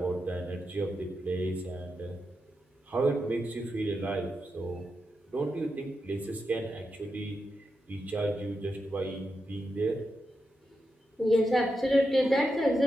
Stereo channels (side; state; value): both; normal; correlation 0.87